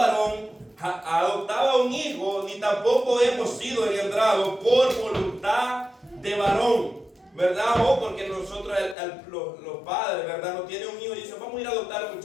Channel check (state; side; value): drops out; right; at 9.0 s